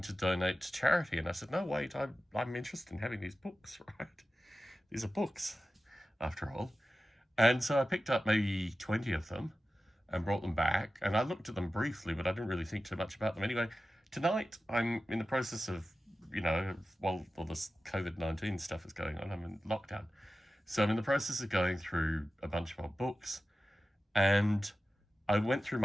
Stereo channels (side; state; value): both; normal; correlation 0.94